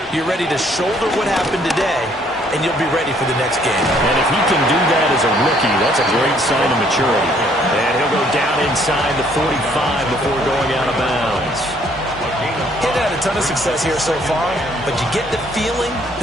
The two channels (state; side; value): normal; both; correlation 0.64